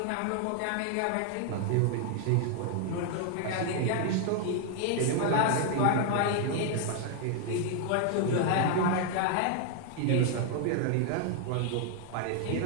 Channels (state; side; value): different; both; correlation 0.00